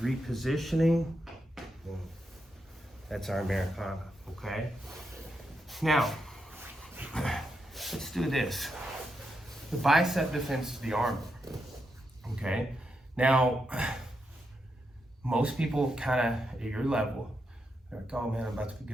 repositioning, boom. That's our Americana, okay? Now, let's do this. The bicep defense is the armbar, okay? Now, most people kind of at your level, they're like, oh man, I'm about to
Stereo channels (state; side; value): normal; both; correlation 0.84